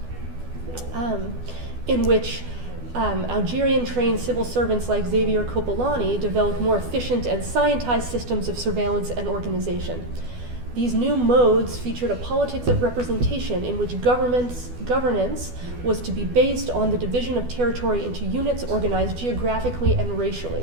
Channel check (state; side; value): late; left; 12 ms